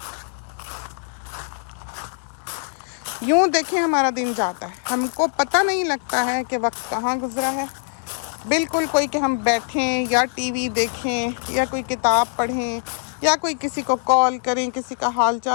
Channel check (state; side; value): silent; right; 64 dB below the other